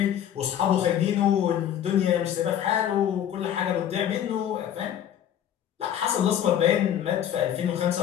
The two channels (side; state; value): right; quieter; 10.2 dB